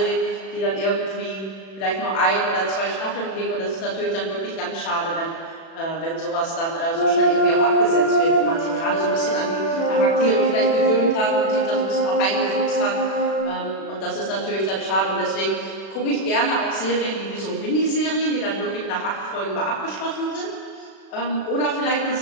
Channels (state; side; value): late; right; 36 ms